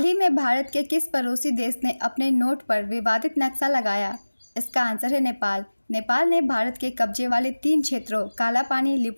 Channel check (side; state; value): both; inverted; correlation -1.00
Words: ही में भारत के किस पड़ोसी देश ने अपने नोट पर विवादित नक्शा लगाया? इसका आंसर है नेपाल। नेपाल ने भारत के कब्जे वाले 3 क्षेत्रों कालापानी,